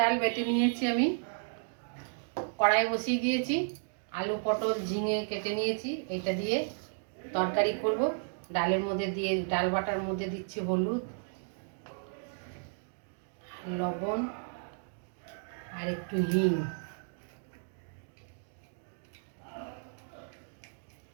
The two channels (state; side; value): silent; left; digital silence